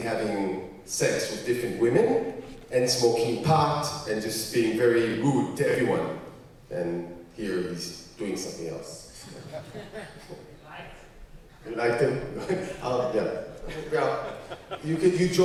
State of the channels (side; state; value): both; identical; correlation 1.00